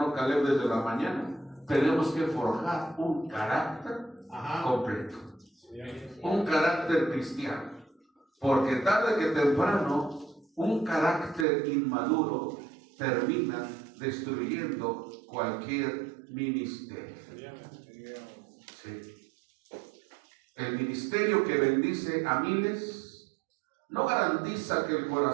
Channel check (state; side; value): drops out; left; at 11.5 s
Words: Caleb desde la mañana, tenemos que forjar un carácter completo, un carácter cristiano, porque tarde que temprano un carácter inmaduro termina destruyendo cualquier ministerio. Sí. El ministerio que bendice a miles no garantiza que el